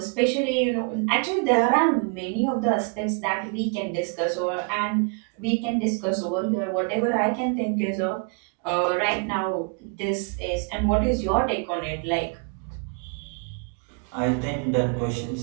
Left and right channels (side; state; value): left; quieter; 36.7 dB